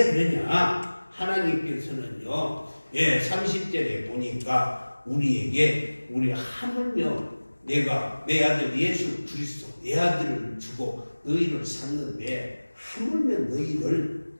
그러냐? 하나님께서는요, 30절에 보니까 우리에게 하물며 내가 내 아들 예수 그리스도 내 아들을 주고 너희를 샀는데 하물며 너희를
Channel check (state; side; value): inverted; both; correlation -1.00